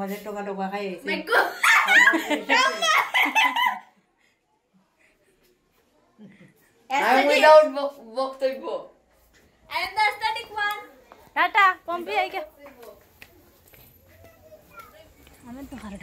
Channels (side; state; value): both; identical; correlation 1.00